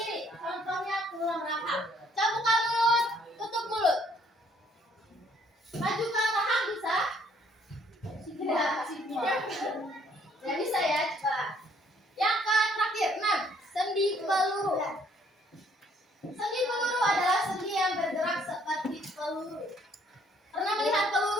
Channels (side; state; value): both; normal; correlation 0.64